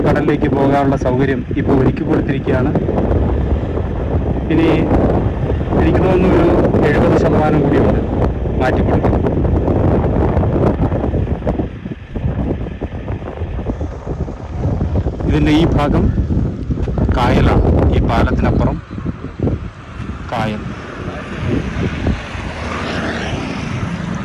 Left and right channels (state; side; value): identical; both; correlation 1.00